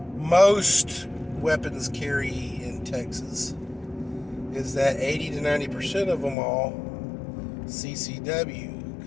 most weapons carry in Texas is that 80 to 90% of them all CCW,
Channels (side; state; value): right; drops out; at 6.4 s